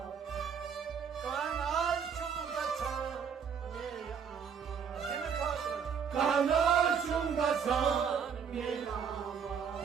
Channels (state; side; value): quieter; left; 6.9 dB